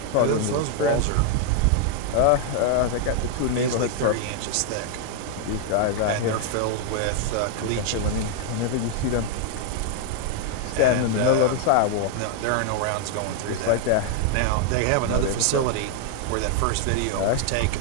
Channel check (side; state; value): both; different; correlation 0.00